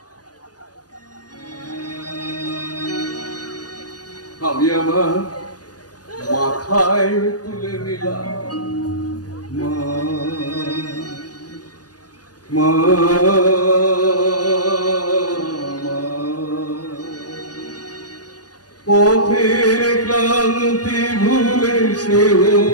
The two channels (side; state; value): right; late; 0.69 ms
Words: আমি আমার মাথায় তুলে নিলাম। মা মা পথের ক্লান্তি ভুলে সে